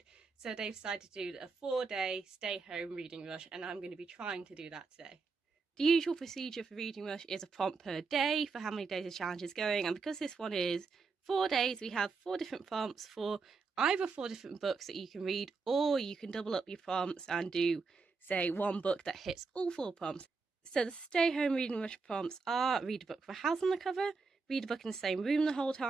So they've decided to do a 4-day stay-home reading rush, and I'm going to be trying to do that today. The usual procedure for Reading Rush is a prompt per day for how many days the challenge is going, and because this one is 4 days, we have 4 different prompts for either 4 different books that you can read, or you can double up your prompts and do, say, one book that hits all 4 prompts. So the Stay Home Reading Rush prompts are: read a book with a house on the cover, read a book in the same room the whole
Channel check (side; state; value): left; quieter; 4.5 dB